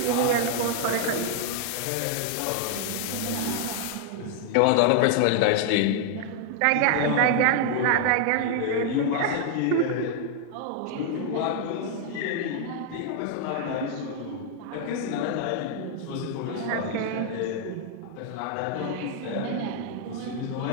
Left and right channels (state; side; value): different; both; correlation 0.00